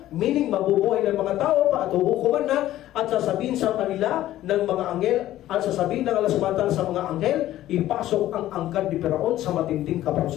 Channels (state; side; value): quieter; right; 13.9 dB